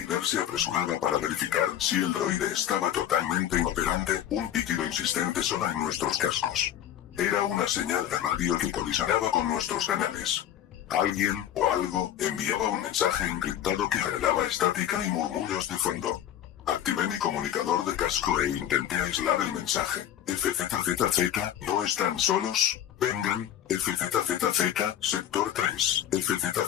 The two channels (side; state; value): right; quieter; 11.0 dB